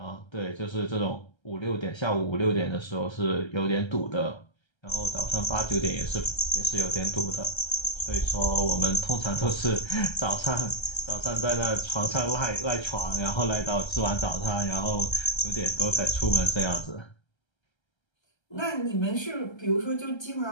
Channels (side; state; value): right; late; 1.3 ms